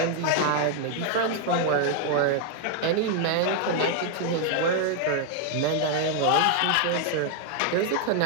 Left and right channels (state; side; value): different; both; correlation 0.00